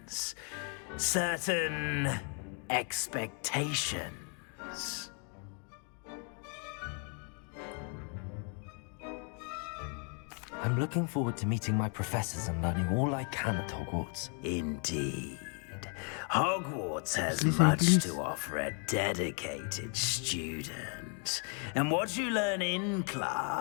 Certain expectations. I'm looking forward to meeting my professors and learning all I can at Hogwarts. Indeed. Hogwarts has much to offer a dedicated student. And what you learn in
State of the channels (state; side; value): quieter; right; 39.9 dB